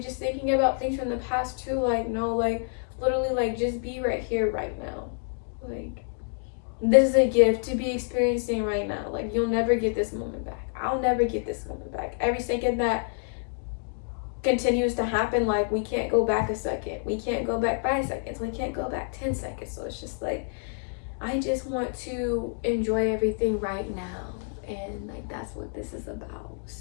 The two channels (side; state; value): right; silent; 59 dB below the other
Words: just thinking about things from the past too. Like, no, like literally, like just be right here right now. Like, this is a gift to be experiencing right now. Like, you'll never get this moment back. I'll never get this moment back. Every second that continues to happen, like we can't go back a second, we can't go back 5 seconds, we can't go back 10 seconds. So it's just like I just want to enjoy everything right now, and like that's what this is about.